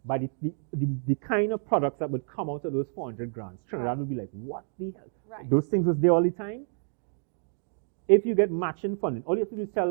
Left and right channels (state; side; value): silent; left; 59 dB below the other